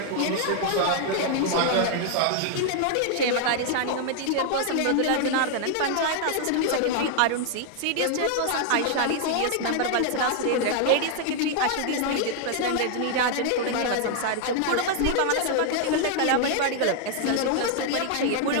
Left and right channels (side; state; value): both; different; correlation 0.00